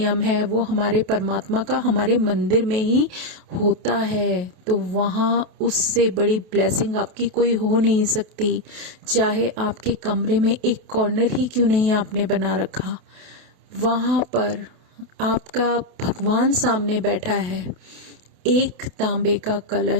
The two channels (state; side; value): late; left; 28 ms